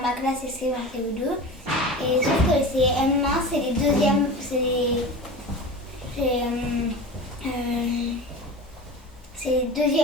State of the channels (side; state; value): both; normal; correlation 0.32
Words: ma classe c'est CE1, CE2 et sauf que les CM1 c'est les deuxièmes, c'est les